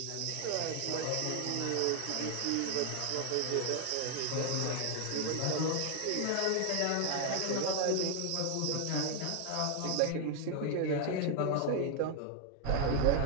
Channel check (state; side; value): different; both; correlation 0.00